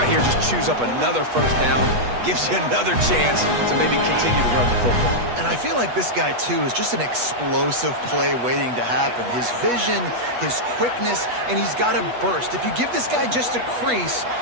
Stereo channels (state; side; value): late; left; 8.2 ms